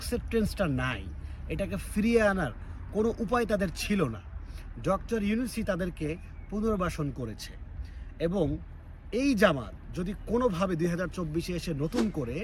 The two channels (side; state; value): both; identical; correlation 1.00